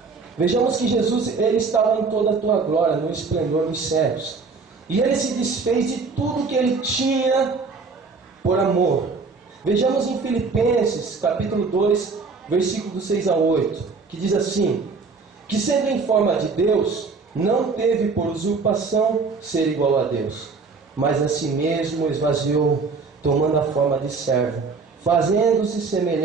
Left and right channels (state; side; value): quieter; left; 4.5 dB